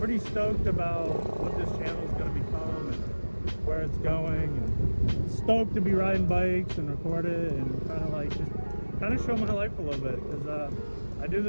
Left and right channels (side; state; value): both; inverted; correlation -1.00